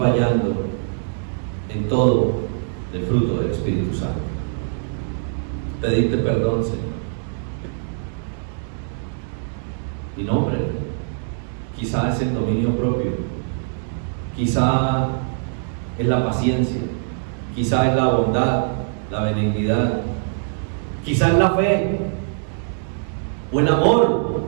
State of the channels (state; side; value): silent; left; digital silence